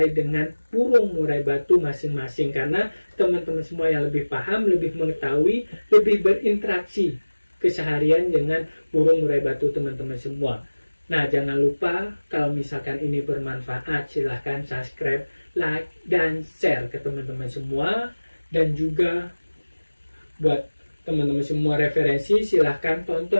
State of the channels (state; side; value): inverted; both; correlation -1.00